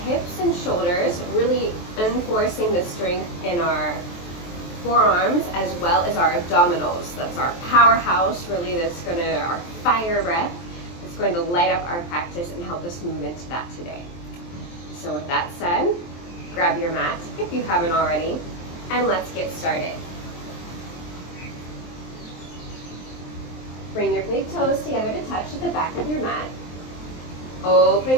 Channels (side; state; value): right; late; 23 ms